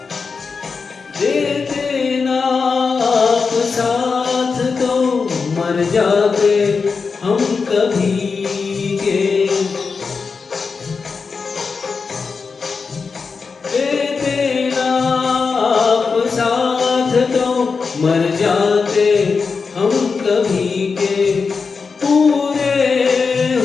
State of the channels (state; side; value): quieter; right; 5.0 dB